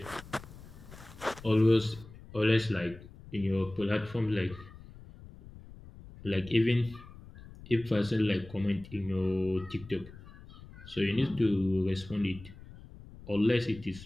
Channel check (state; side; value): noise; left; rumble, 18 dB below the sound